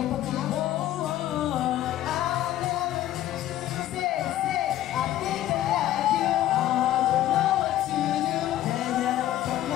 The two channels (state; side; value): quieter; right; 13.4 dB